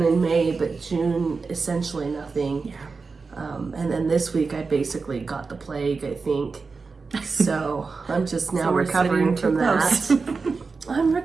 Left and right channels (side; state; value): left; quieter; 4.5 dB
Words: in May, but June essentially nothing. Yeah. And then this week I basically got the plague, I think. So I'm just now recovering from that. I'm